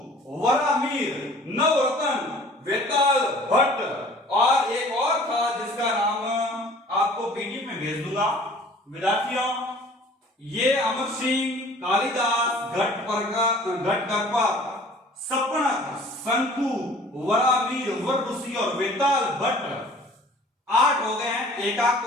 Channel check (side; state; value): both; normal; correlation 0.50